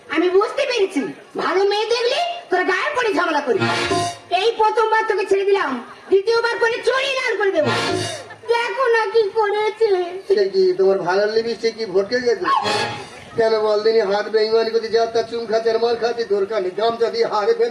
আমি বুঝতে পেরেছি, ভালো মেয়ে দেখলে তোরা গায়ে পড়ে ঝামেলা করি। এই প্রথমবার তোকে ছেড়ে দিলাম, দ্বিতীয়বার করে চড়িয়ে লাল করে দেবো। দেখো না কি করেছে। সে কি তোমার ভালো লিপস্টিক কি ভটকে গেছে? কেন বলদিনি হাত বেইমানি করতে, যা তার চুম খাচ্ছে আর মার খাচ্ছে, দরকার নেই। গামছা দিয়ে হারে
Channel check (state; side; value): identical; both; correlation 1.00